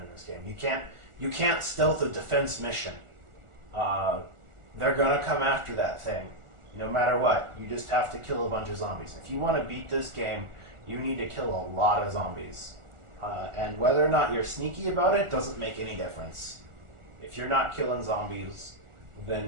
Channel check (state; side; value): late; left; 1.4 ms